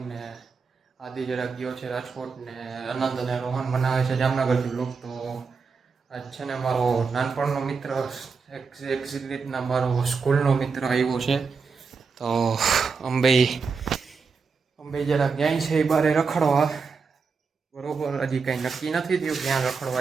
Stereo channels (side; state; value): left; quieter; 5.1 dB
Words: ને આદિ જરાક ગયો છે રાજકોટ ને આનંદ અને રોહન બનાવે છે જામનગરથી વ્લોગ. તો આજ છે ને મારો નાનપણનો મિત્ર એક રીતના મારો સ્કૂલનો મિત્ર આવ્યો છે. તો અંબે જરાક જાય છે એ બારે રખડવા. બરોબર, હજી કંઈ નક્કી નથી થયું ક્યાં